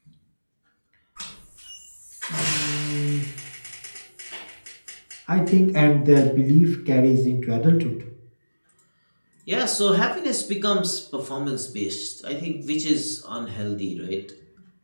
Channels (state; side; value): inverted; both; correlation -1.00